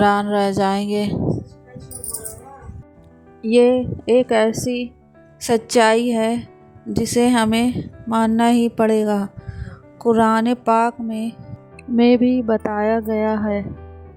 رہ جائیں گے۔ یہ ایک ایسی سچائی ہے جسے ہمیں ماننا ہی پڑے گا۔ قرآن پاک میں بھی بتایا گیا ہے،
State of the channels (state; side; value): identical; both; correlation 1.00